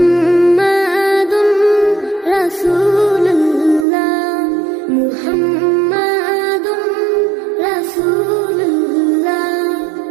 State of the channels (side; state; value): left; drops out; at 3.9 s